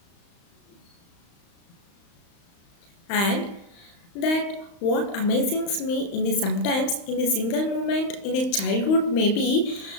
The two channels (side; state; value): right; late; 35 ms